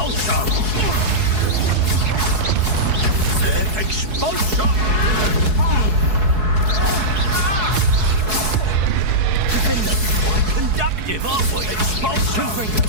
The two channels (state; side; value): late; left; 4.7 ms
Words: Expulso! Defender! Quite conductive, aren't we? Expulso!